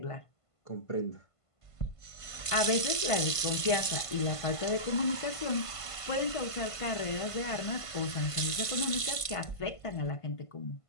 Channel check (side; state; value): right; late; 1.5 ms